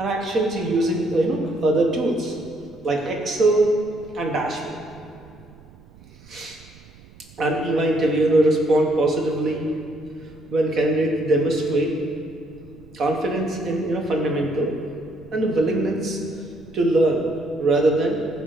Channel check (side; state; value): right; noise; rumble, 24 dB below the sound